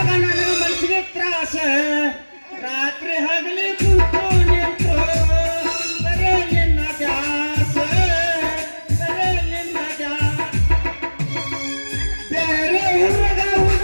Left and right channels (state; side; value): inverted; both; correlation -1.00